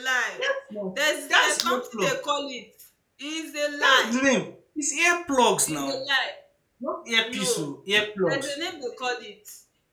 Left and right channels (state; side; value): identical; both; correlation 1.00